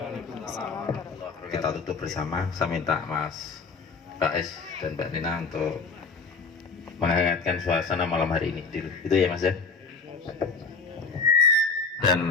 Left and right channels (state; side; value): quieter; right; 4.4 dB